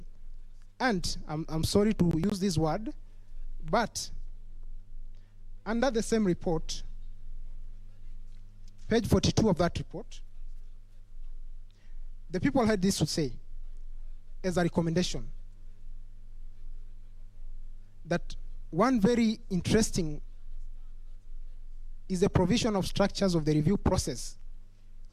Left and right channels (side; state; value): both; identical; correlation 1.00